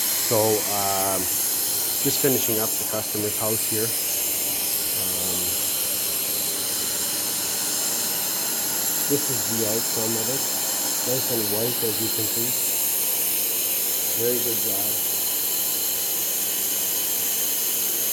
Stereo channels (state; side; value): identical; both; correlation 1.00